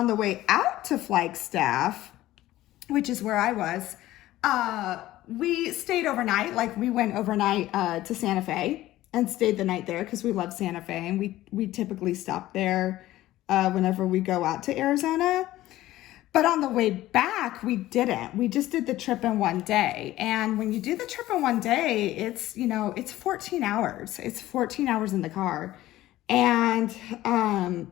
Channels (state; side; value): quieter; right; 15.6 dB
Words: the way out to Flagstaff, which is where I was, we stayed overnight. Like, we went overnight to Santa Fe and stayed the night there because we love Santa Fe, and we typically stop there whenever we go out to Arizona. But on the way back, we didn't. We just did the trip in one day. And when you do the trip in one day, it's 14 hours. It's 14 hours in the car. And